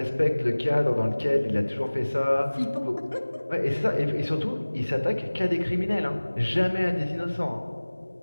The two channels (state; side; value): inverted; both; correlation -1.00